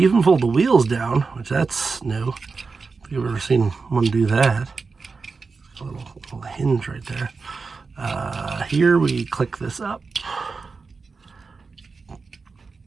even fold the wheels down, which that's new. If you've ever seen one do that. A little hinge right there. Here we click this up.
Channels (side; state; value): left; quieter; 4.5 dB